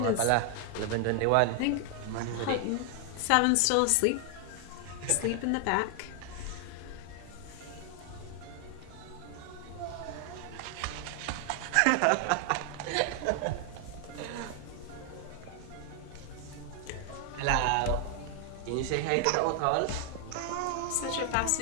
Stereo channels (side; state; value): both; different; correlation 0.00